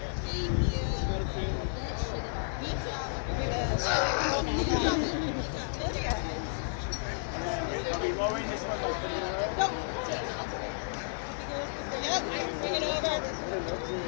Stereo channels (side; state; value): right; silent; digital silence